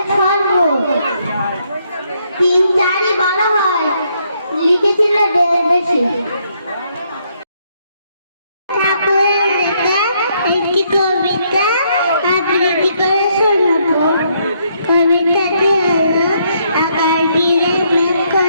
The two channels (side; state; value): both; inverted; correlation -0.73